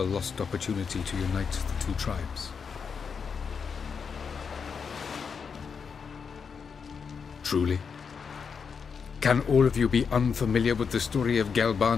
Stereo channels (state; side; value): quieter; right; 6.1 dB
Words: lost opportunity to unite the two tribes. Truly? Can all of you be unfamiliar with the story of